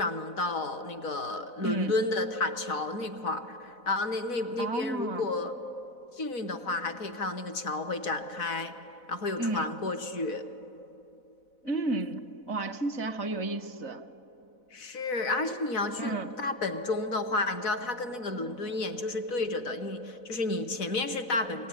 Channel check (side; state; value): right; late; 4.0 ms